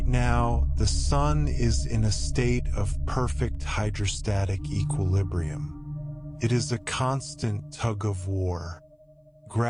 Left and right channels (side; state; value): both; identical; correlation 1.00